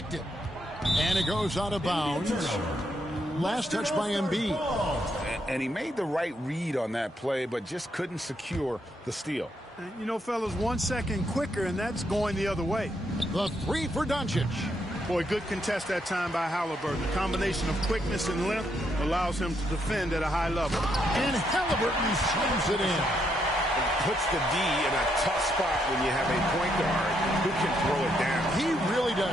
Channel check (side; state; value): both; normal; correlation 0.76